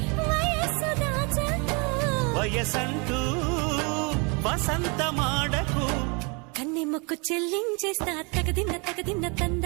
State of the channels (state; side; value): quieter; left; 31.9 dB